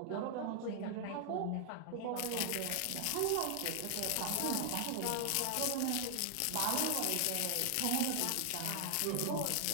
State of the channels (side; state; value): both; different; correlation 0.00